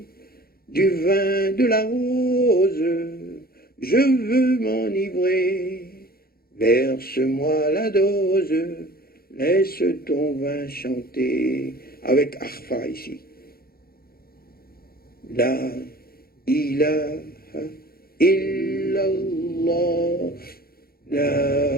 Du vin de la rose, je veux m'enivrer. Verse-moi la dose, laisse ton vin chanter. Avec Arfa ici. La ilaha illallah,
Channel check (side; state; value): right; late; 0.44 ms